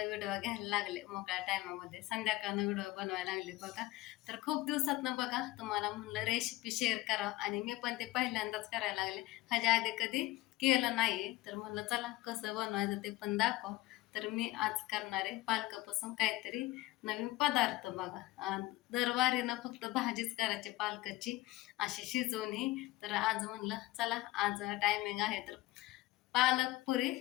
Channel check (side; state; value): right; quieter; 18.5 dB